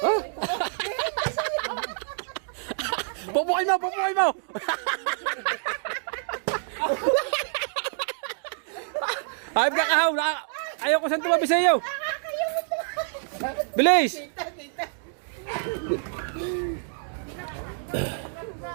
Pupukin mo! Hayop ka kahaw! Ayaw ko saan tumabi sa iyo! Bilis!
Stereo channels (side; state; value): left; silent; digital silence